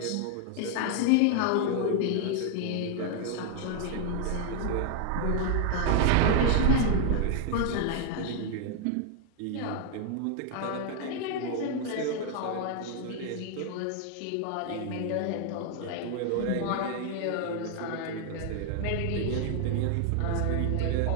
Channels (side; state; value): both; different; correlation 0.00